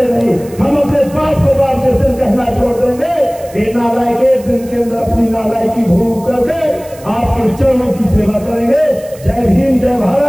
नहीं। हम अपने बाप को बाप जिस दिन कहना छोड़ देंगे, ये नालायक एक दिन के अंदर अपनी नालायकी भूल करके आपके चरणों की सेवा करेंगे। जय भीम, जय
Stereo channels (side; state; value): right; noise; hiss, 22 dB below the sound